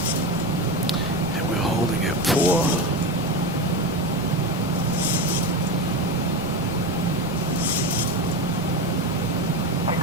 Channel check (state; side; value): normal; both; correlation 0.19